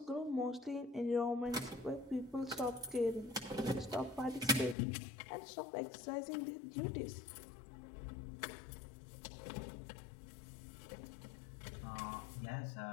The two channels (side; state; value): right; drops out; at 4.8 s